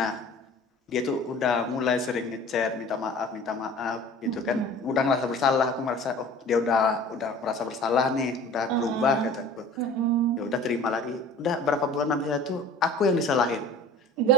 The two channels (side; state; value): both; normal; correlation 0.44